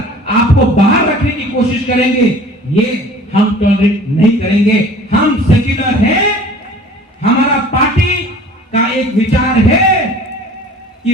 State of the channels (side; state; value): both; normal; correlation 0.47